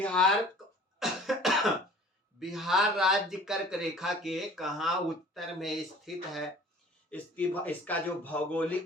बिहार राज्य कर्क रेखा के कहाँ उत्तर में स्थित है। इसका जो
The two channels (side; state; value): both; normal; correlation 0.48